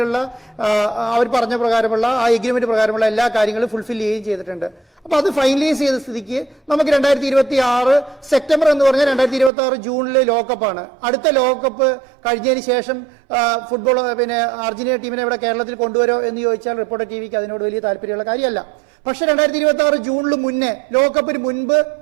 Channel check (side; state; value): left; drops out; at 9.5 s